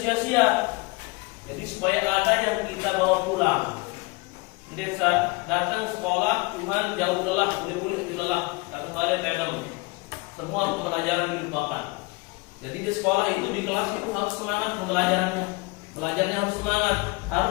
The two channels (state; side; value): quieter; right; 26.2 dB